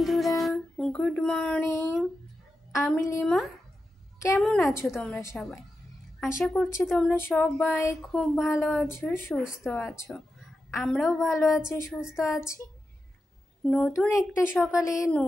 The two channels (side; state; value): both; normal; correlation 0.90